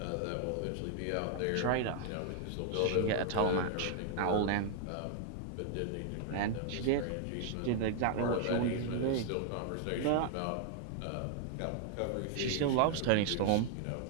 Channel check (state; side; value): different; both; correlation 0.00